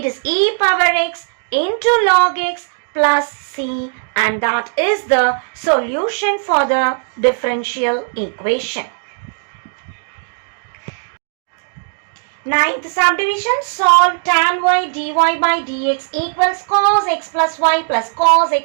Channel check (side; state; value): left; silent; digital silence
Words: is e power x into log x plus c, and that is the solution for the differential equation. Ninth subdivision. Solve tan y dy by dx equals cos x plus y plus cos